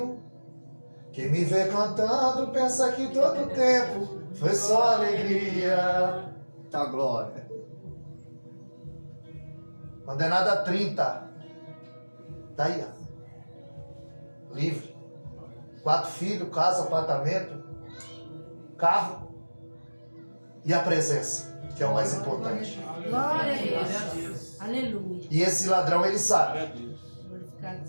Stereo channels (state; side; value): inverted; both; correlation -1.00